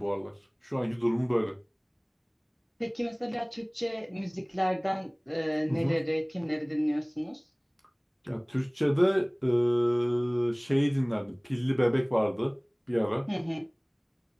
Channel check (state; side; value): identical; both; correlation 1.00